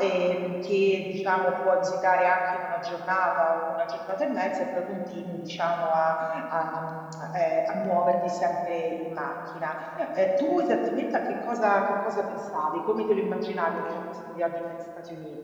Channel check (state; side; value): identical; both; correlation 1.00